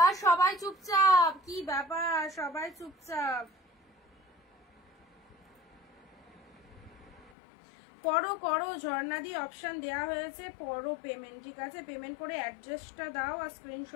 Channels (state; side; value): drops out; right; at 7.3 s